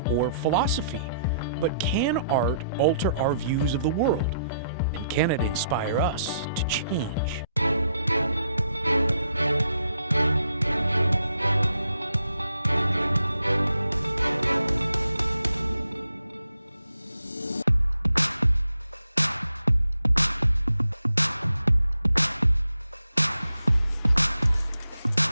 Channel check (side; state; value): both; inverted; correlation -0.77